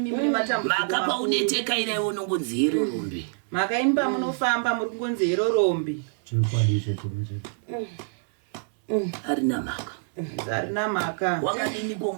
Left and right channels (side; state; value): left; silent; 61 dB below the other